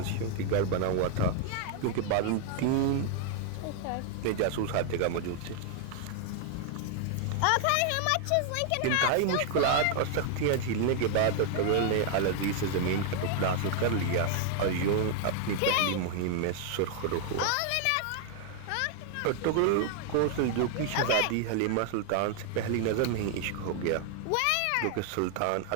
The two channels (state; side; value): different; both; correlation 0.00